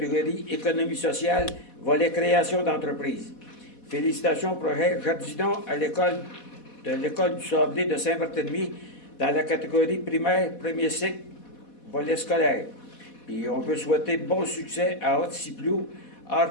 économie sociale, volet création d'entreprise. Félicitations au projet Jardinons à l'école du Sablé de Saint-Barthélemy dans la catégorie primaire, premier cycle, volet scolaire. Puis on veut souhaiter bon succès à Haute-Ciplou,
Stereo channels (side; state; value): right; late; 4.1 ms